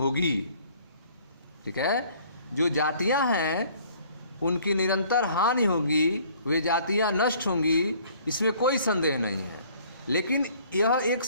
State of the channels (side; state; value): both; inverted; correlation -0.56